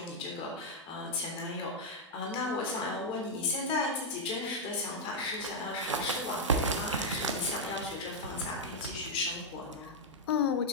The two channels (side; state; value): both; normal; correlation -0.02